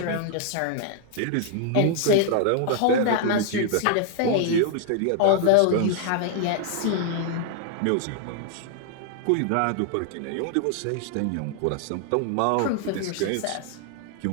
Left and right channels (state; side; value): different; both; correlation 0.00